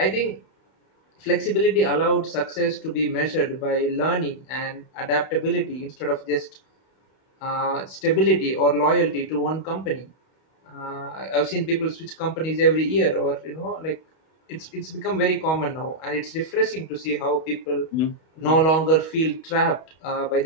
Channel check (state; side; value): late; right; 31 ms